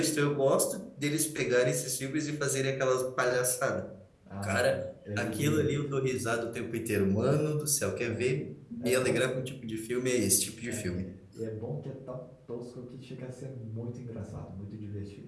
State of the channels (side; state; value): both; identical; correlation 1.00